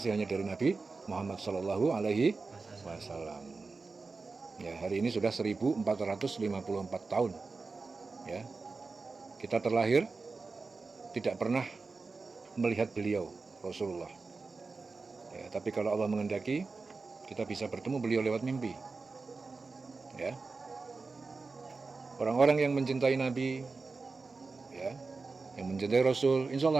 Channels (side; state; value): left; quieter; 4.1 dB